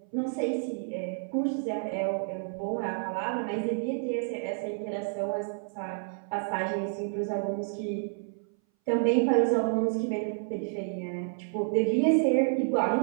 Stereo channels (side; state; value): left; silent; 58 dB below the other